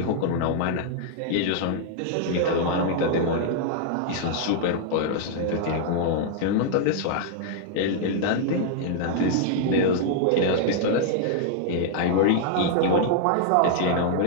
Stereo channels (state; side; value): different; both; correlation -0.01